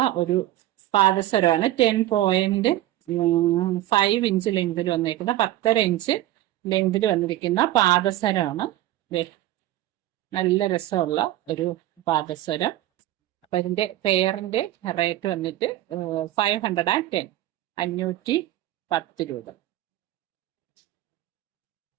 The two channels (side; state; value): left; quieter; 14.6 dB